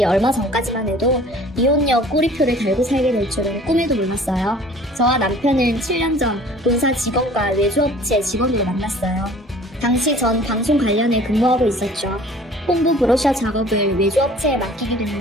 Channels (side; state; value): both; normal; correlation 0.49